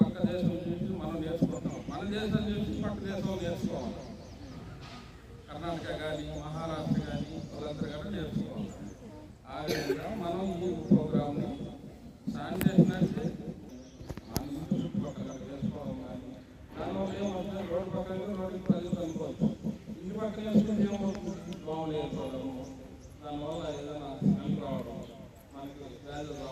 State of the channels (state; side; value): identical; both; correlation 1.00